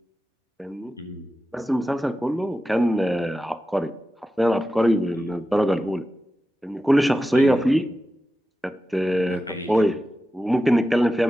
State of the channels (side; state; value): both; normal; correlation 0.93